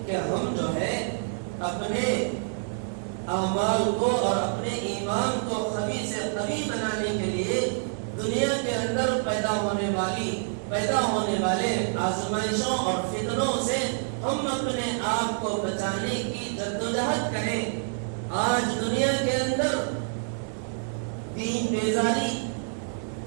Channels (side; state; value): left; silent; digital silence